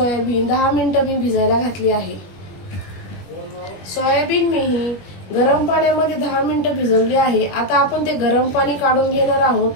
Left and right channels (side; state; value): right; late; 21 ms